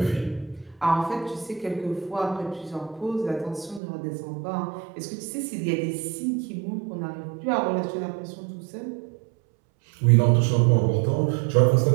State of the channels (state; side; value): drops out; left; at 3.8 s